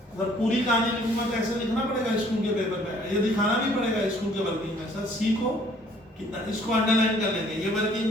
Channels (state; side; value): normal; both; correlation 0.59